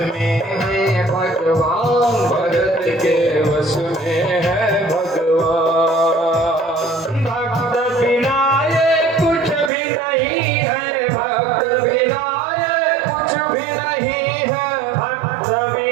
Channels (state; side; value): drops out; left; at 9.7 s